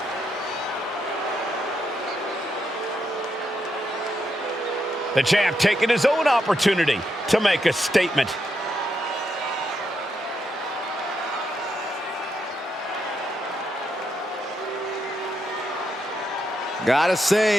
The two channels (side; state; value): both; normal; correlation 0.81